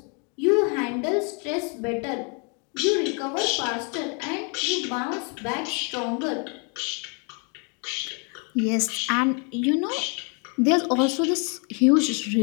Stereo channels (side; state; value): right; quieter; 36.4 dB